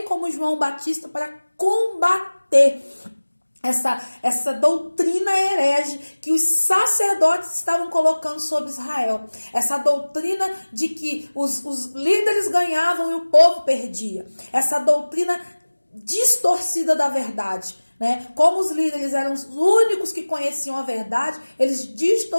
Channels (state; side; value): inverted; both; correlation -1.00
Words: como João Batista para combater essa doutrina herege que os sacerdotes estavam colocando sobre Israel. Essa doutrina de que os líderes ganhavam e o povo perdia. Essa doutrina distorcida da verdade, né? Como os líderes eram os únicos que conheciam a verdade, eles